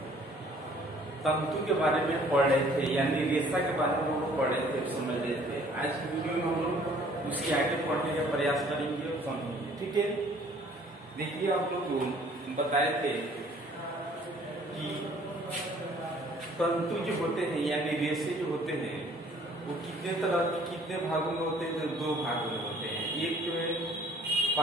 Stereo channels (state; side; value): normal; both; correlation 0.56